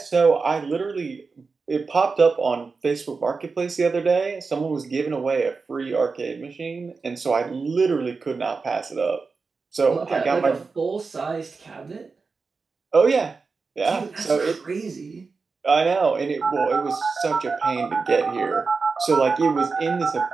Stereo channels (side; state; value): left; quieter; 4.5 dB